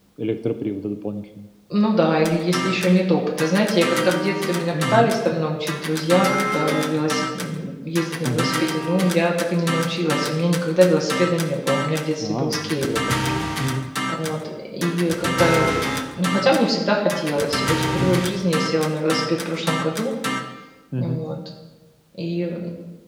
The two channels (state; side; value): identical; both; correlation 1.00